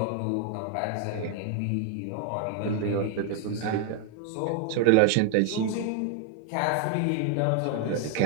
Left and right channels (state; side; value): different; both; correlation 0.01